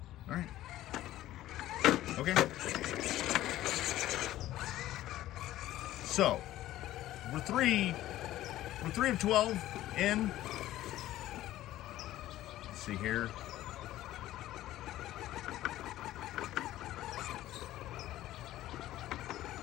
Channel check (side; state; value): right; quieter; 14.5 dB